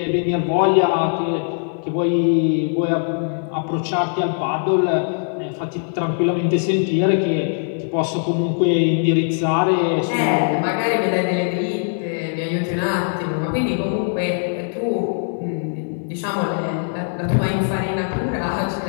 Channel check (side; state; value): right; silent; 65 dB below the other